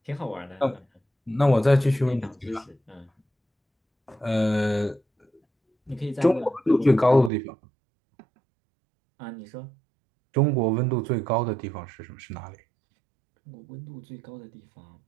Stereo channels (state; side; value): drops out; left; at 7.3 s